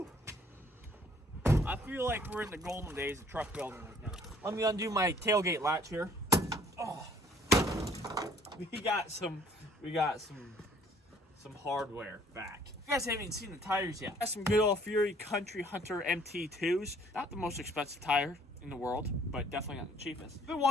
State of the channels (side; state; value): both; normal; correlation 0.58